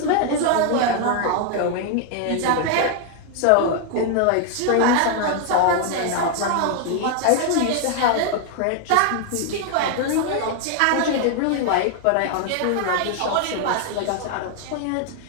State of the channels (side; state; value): both; different; correlation 0.00